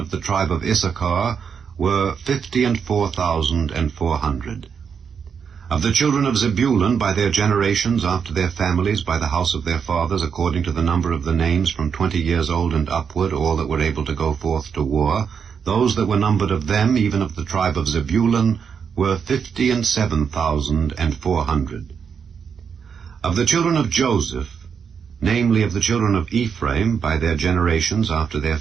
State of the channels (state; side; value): quieter; left; 6.7 dB